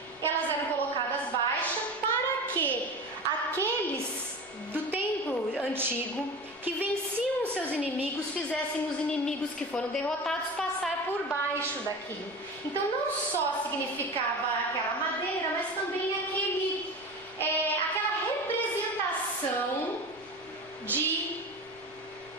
Elas eram colocadas baixas para que aqueles do tempo antigo que venciam os seus inimigos fizessem os inimigos que foram derrotados passar por baixo daquilo. Então não só significava aquela madeira, mas também aquela representação de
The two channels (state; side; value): noise; left; rumble, 28 dB below the sound